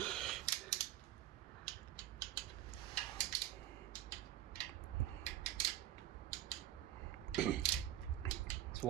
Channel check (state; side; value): quieter; left; 13.2 dB